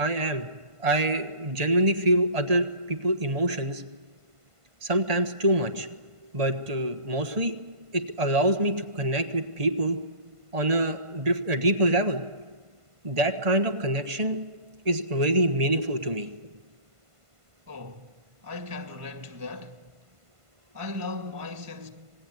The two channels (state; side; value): late; left; 1.5 ms